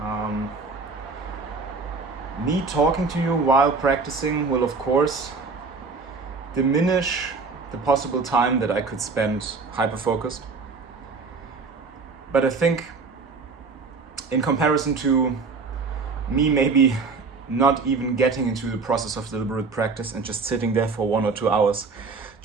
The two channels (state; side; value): quieter; left; 4.4 dB